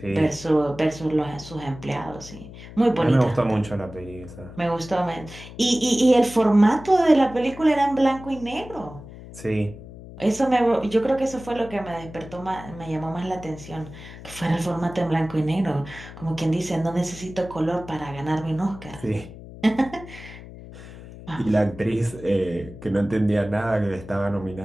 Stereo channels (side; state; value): left; noise; hum, 15 dB below the sound